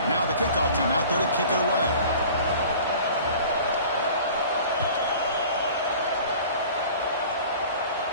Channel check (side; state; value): both; inverted; correlation -0.45